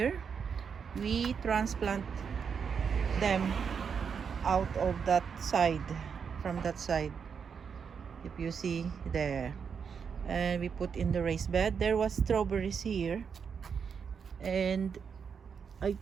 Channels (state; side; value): quieter; left; 6.5 dB